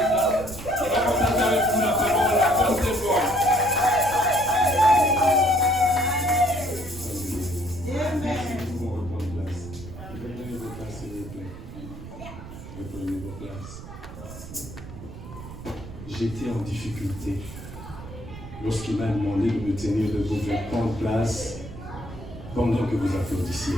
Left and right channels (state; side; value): noise; right; rumble, 13 dB below the sound